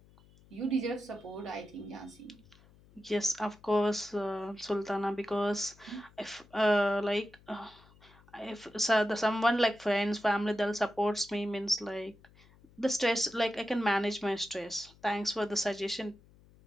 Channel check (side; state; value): left; noise; hum, 26 dB below the sound